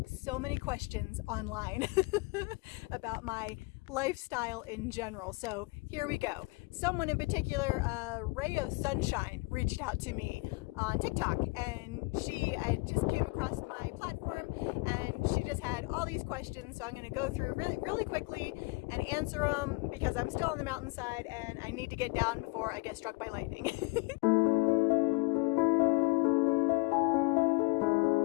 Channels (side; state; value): right; quieter; 26.6 dB